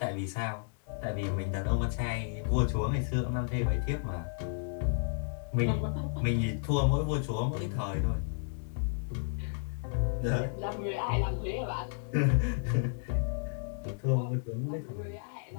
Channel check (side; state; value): right; silent; digital silence